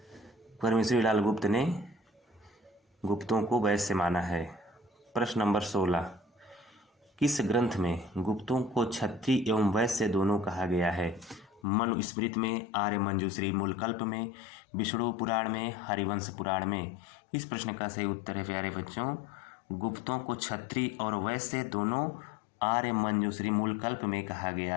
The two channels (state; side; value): drops out; right; at 11.7 s